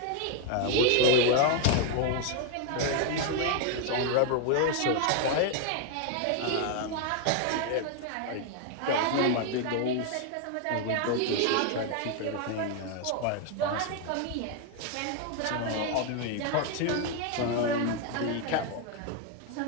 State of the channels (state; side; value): different; both; correlation 0.01